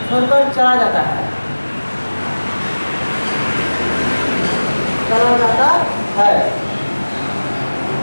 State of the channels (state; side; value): inverted; both; correlation -1.00